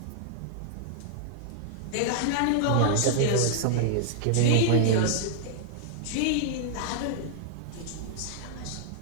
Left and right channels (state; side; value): different; both; correlation 0.00